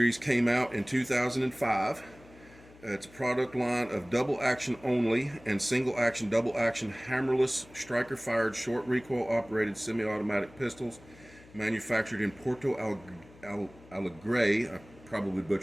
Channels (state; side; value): noise; left; hum, 23 dB below the sound